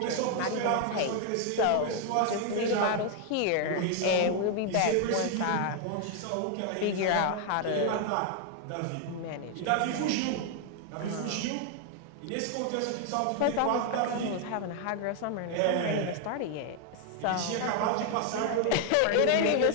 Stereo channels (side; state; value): both; different; correlation 0.00